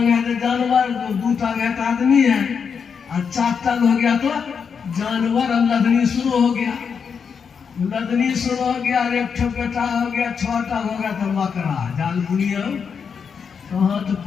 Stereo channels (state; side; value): quieter; right; 6.4 dB